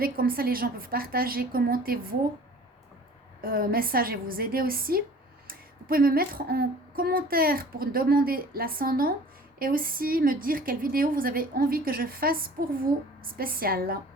comme ça, les gens peuvent partager, commenter vos messages et vous aider aussi. Vous pouvez me mettre en commentaire pour demander l'ascendant et aussi me dire quelle vidéo vous avez envie que je fasse pour vous spéciale.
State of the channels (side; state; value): both; normal; correlation 0.47